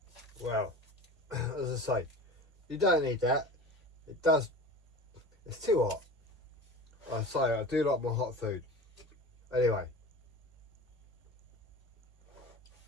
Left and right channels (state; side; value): normal; both; correlation 0.35